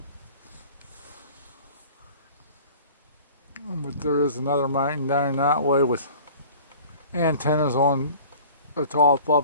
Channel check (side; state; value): both; inverted; correlation -0.44